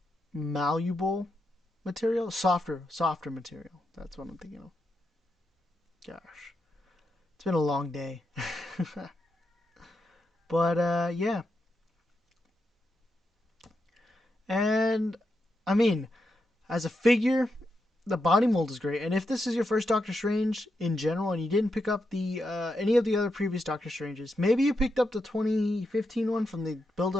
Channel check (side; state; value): both; normal; correlation 0.85